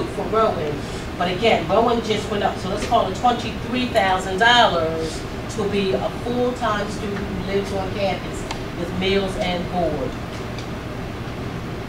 for Rowan. But again, Rowan just went up, so let's call it $23,000 to be a full-time student who lives on campus with meals and board.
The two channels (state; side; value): identical; both; correlation 1.00